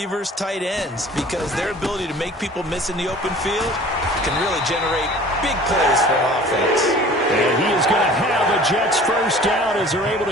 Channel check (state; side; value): normal; both; correlation 0.46